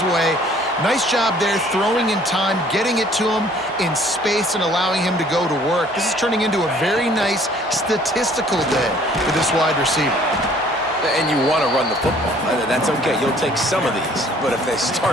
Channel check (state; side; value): normal; both; correlation 0.57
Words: way. Nice job there, throwing in time, getting it to him in space and allowing him to go to work. This is turning into a very nice statistical day for this wide receiver. And you want to run the football. That's okay. You'll take some of these. But if they